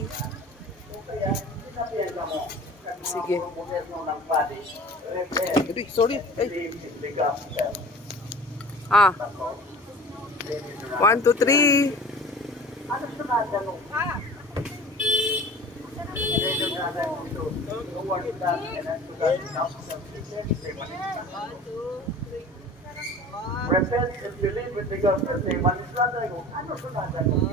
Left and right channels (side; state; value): both; normal; correlation 0.41